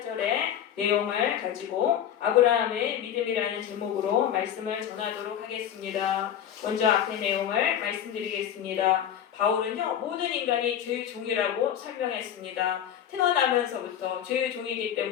내용을 가지고 아브라함의 믿음이라는 제목으로 말씀을 전하도록 하겠습니다. 먼저 앞의 내용을 말씀드리겠습니다. 바울은요, 모든 인간이 죄의 종이라고 설명했습니다. 태어나면서부터 죄의 종이기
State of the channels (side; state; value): right; quieter; 9.8 dB